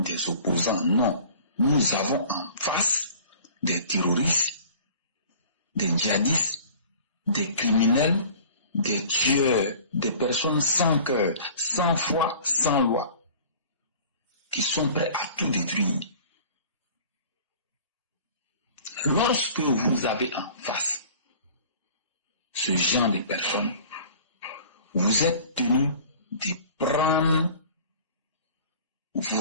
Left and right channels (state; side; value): inverted; both; correlation -0.45